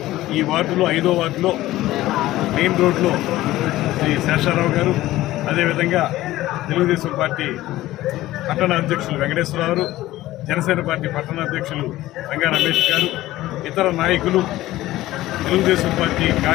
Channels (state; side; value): quieter; right; 16.0 dB